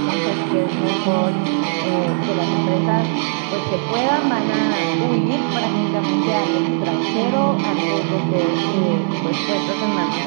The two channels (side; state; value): left; silent; 61 dB below the other